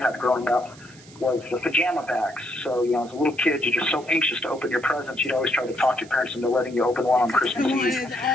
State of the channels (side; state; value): right; noise; hiss, 23 dB below the sound